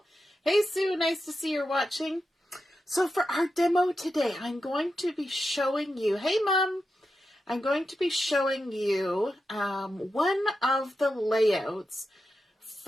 Hey, Sue, nice to see you're watching. So for our demo today, I'm going to be showing you, hey, Mom, I'm going to be showing you one of the layouts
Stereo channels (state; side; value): normal; both; correlation 0.89